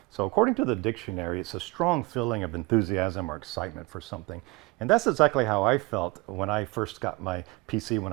So according to the dictionary, it's a strong feeling of enthusiasm or excitement for something. And that's exactly how I felt when I first got my PC when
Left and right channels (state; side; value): quieter; left; 23.9 dB